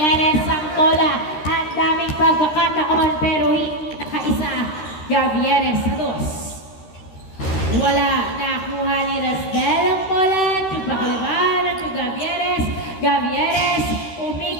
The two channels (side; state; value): right; late; 13 ms